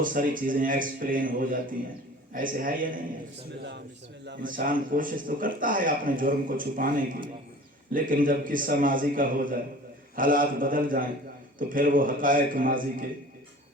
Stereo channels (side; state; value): both; normal; correlation 0.43